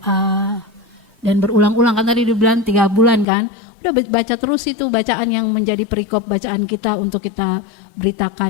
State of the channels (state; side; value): drops out; right; at 3.2 s